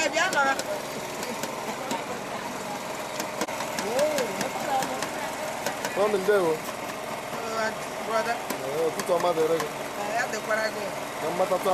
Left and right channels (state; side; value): identical; both; correlation 1.00